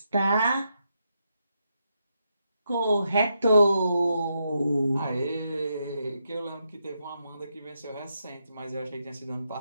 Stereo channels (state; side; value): inverted; both; correlation -0.82